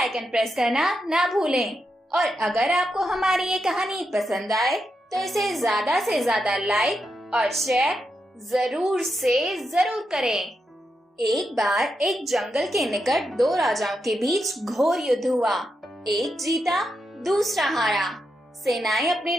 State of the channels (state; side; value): normal; both; correlation 0.85